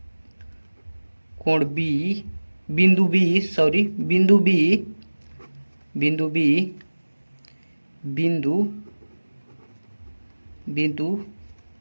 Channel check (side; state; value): both; inverted; correlation -1.00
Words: कोण बी, बिंदु बी बिंदु